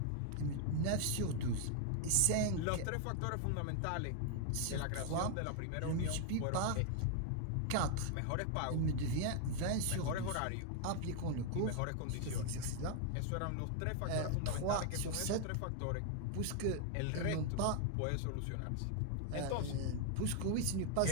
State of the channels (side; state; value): both; different; correlation 0.00